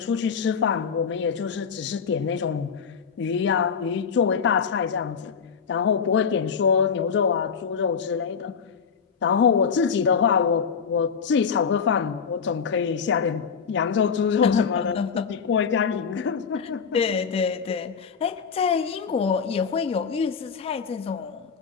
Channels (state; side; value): quieter; right; 6.3 dB